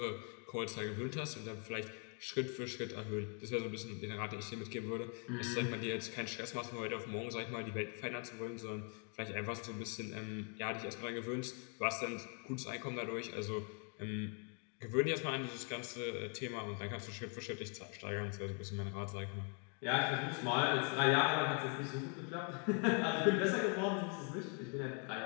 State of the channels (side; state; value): right; quieter; 38.1 dB